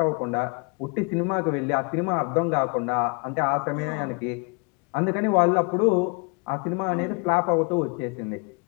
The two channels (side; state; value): right; quieter; 33.6 dB